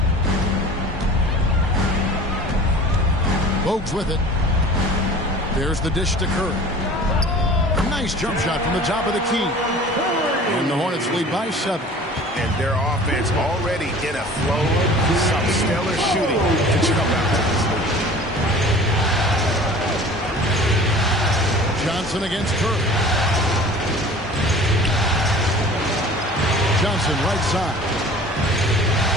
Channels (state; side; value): normal; both; correlation 0.44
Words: Bogues with it. There's the dish to Curry. Nice jump shot from the top of the key. And the Hornets lead by 7. And their offense already in a flow. Some stellar shooting to jump out to this lead. Johnson against Curry. Johnson right side.